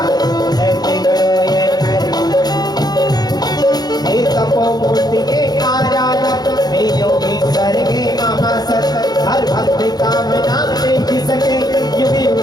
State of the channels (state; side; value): late; right; 0.19 ms